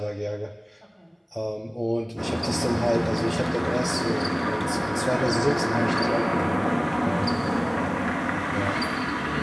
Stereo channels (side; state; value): both; identical; correlation 1.00